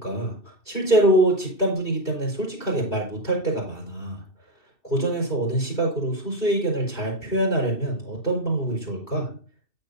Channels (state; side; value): late; right; 2.7 ms